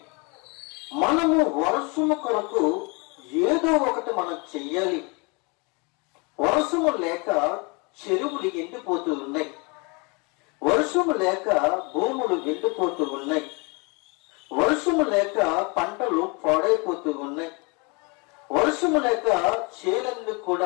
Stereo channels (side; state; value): right; quieter; 30.3 dB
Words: మనము వర్షము కొరకు ఏదో ఒకటి మనం చెయ్యాలి. వర్షము లేక చెరువులు ఎండిపోతూ ఉన్నాయి, వర్షము లేక భూములు ఎండిపోతూ ఉన్నాయి, వర్షము లేక పంటలు పాడైపోతూ ఉన్నాయి, వర్షము లేక చేలన్నీ